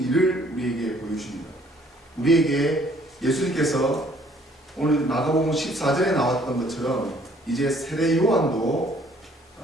일을 우리에게 보여주십니다. 우리에게 예수님께서 오늘 마가복음 14절에 나왔던 것처럼 이제 세례 요한도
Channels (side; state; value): both; normal; correlation 0.61